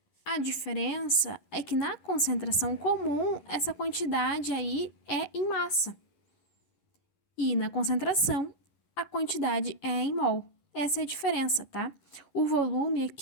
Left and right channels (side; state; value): right; late; 11 ms